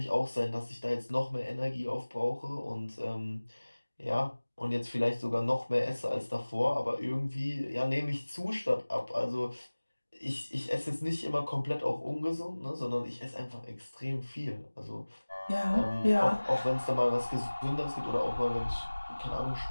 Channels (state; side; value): inverted; both; correlation -1.00